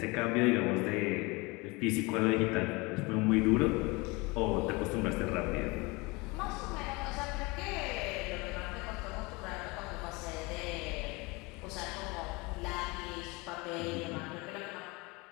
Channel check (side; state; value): right; quieter; 25.5 dB